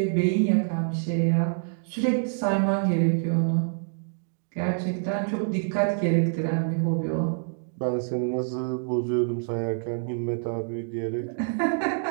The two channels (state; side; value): silent; left; digital silence